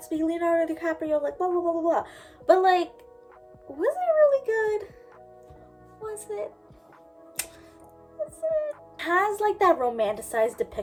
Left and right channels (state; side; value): identical; both; correlation 1.00